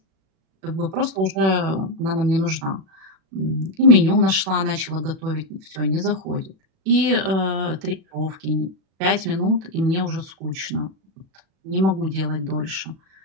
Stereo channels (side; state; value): left; late; 36 ms